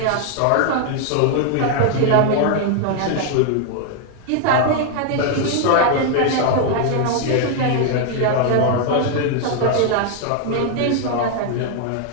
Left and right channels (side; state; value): both; different; correlation 0.00